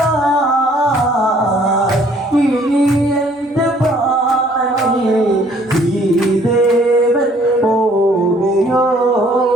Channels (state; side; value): normal; both; correlation 0.60